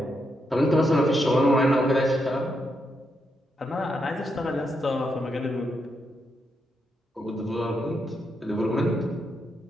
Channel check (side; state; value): both; normal; correlation 0.82